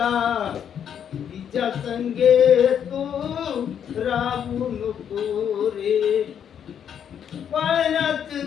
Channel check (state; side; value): quieter; right; 8.6 dB